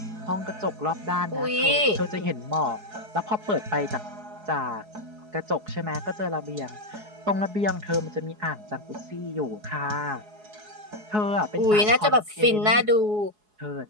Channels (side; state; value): left; late; 4.7 ms